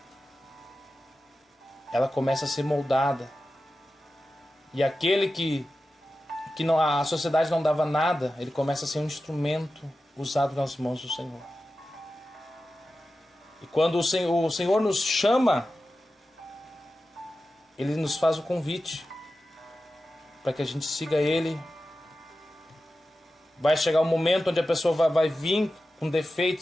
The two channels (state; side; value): normal; both; correlation 0.93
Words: ela começa a ser moldada. E aquele que não, a sociedade não dava nada, ele começa a ser um instrumento usado nas mãos do Senhor. E quando o Senhor nos chama, Ele nos faz o convite para que a gente siga Ele. Vai chegar um momento onde a pessoa vai vir com